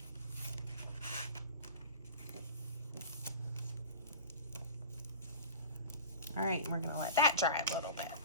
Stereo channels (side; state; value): both; inverted; correlation -0.34